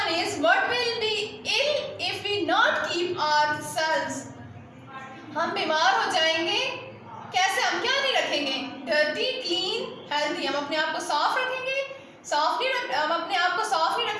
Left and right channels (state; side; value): identical; both; correlation 1.00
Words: one is, what will be ill if we not keep ourselves? हम बीमार हो जाएंगे. कैसे? हम क्या नहीं रखेंगे? Dirty, clean, healthy. हम अपने आप को साफ रखेंगे, हम अपने आप को साफ नहीं